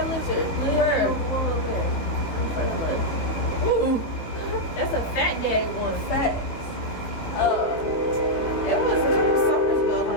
lizard. Where? One over there. Ooh. That's a fat daddy one. Facts. It was a couple summers ago.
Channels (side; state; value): right; late; 19 ms